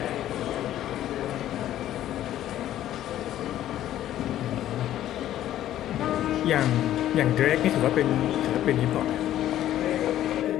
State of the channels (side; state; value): right; quieter; 12.5 dB